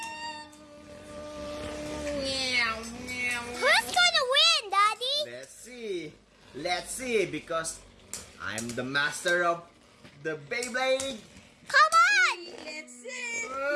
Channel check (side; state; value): both; identical; correlation 1.00